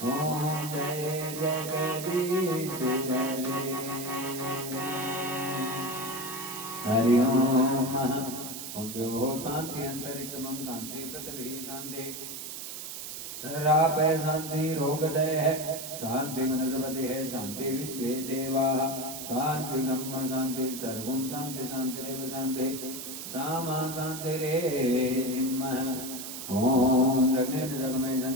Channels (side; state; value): right; noise; hiss, 8 dB below the sound